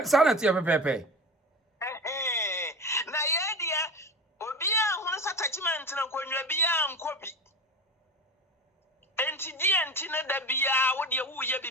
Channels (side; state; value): both; normal; correlation 0.28